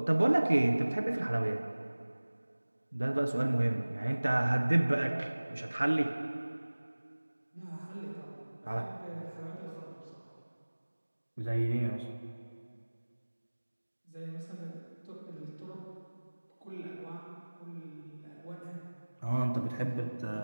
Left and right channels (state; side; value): inverted; both; correlation -1.00